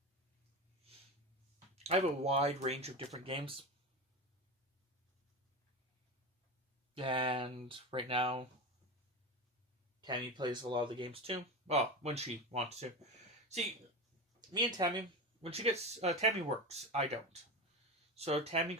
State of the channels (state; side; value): normal; both; correlation 0.23